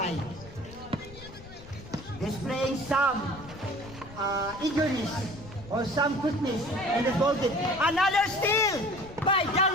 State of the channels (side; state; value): left; noise; rumble, 17 dB below the sound